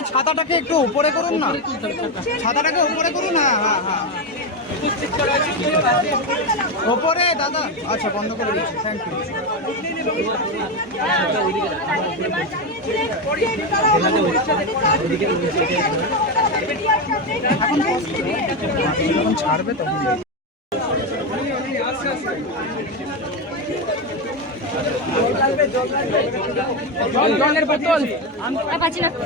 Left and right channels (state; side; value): normal; both; correlation 0.12